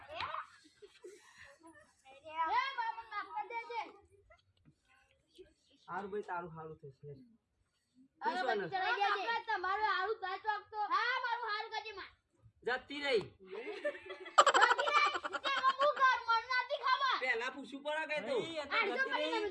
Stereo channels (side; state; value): both; identical; correlation 1.00